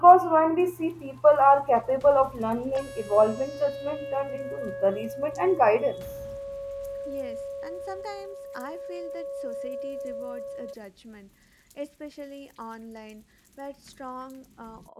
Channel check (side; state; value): both; identical; correlation 1.00